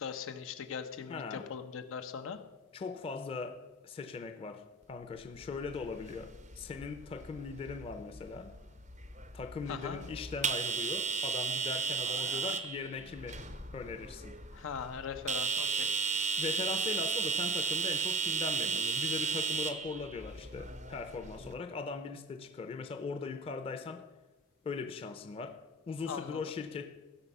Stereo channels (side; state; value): both; normal; correlation 0.35